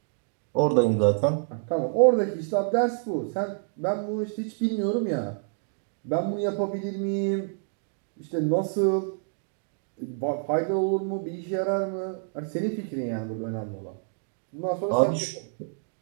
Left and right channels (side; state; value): left; silent; digital silence